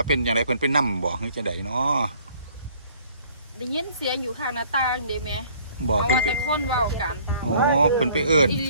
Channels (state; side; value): inverted; both; correlation -0.57